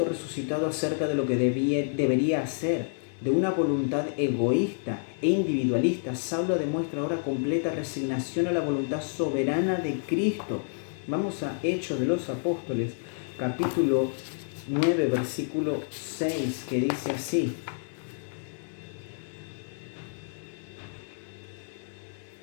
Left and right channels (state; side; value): silent; right; digital silence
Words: resucitado acerca de lo que debería hacer. De una voluntad egoísta e individualista, Saulo demuestra ahora completa resignación a la voluntad soberana de Cristo. Vamos a Hechos de los Apóstoles, capítulo 9, versículo 6, que dice así: